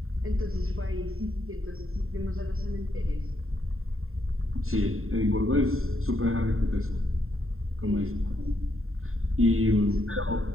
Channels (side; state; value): left; late; 0.61 ms